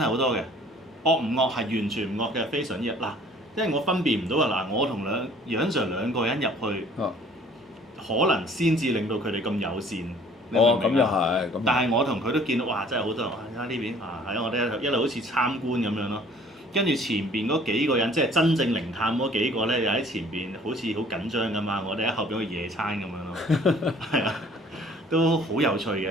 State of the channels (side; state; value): both; normal; correlation 0.54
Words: 好多嘅。惡唔惡係完全唔惡嘅，非常之嗱，因為我分辨唔到啊嗱，我同楊 Sir 兩個人入去，可能先至令到佢哋咁友善。哦，咁又係。但係我同佢都見到，哇！真係好多人，哇！睇下呢邊啊，係啊，我哋一路好似參觀咁樣咯。跟住前邊嗰幾個人，即係真正靈探嗰幾個咧，又喺前邊好似好緊張咁嘛。我哋喺後邊去野餐咁樣咯。係啊。都好有趣嘅